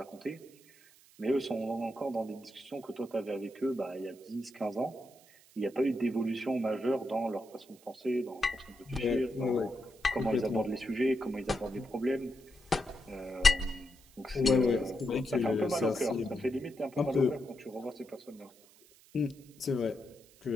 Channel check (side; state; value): right; noise; hiss, 26 dB below the sound